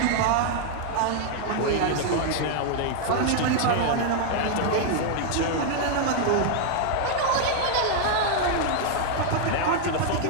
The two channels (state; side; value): different; both; correlation 0.00